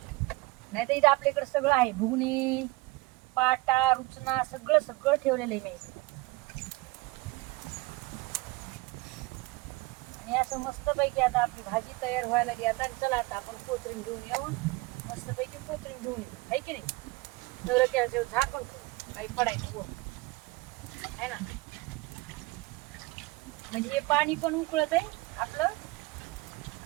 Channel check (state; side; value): quieter; left; 22.5 dB